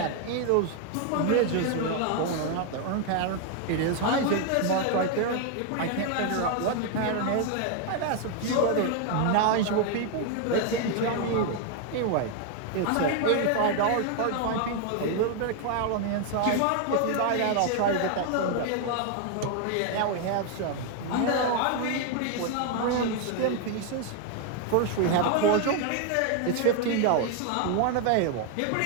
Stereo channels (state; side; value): different; both; correlation 0.00